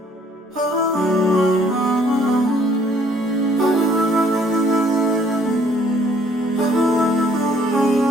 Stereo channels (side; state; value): both; normal; correlation 0.62